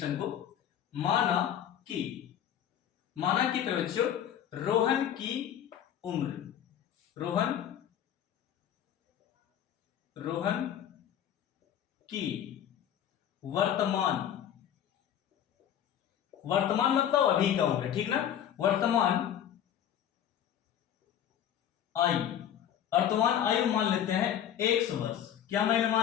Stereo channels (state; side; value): quieter; right; 10.0 dB